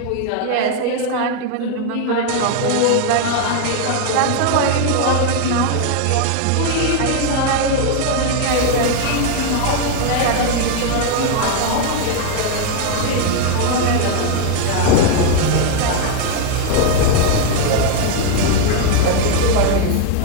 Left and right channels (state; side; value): different; both; correlation 0.01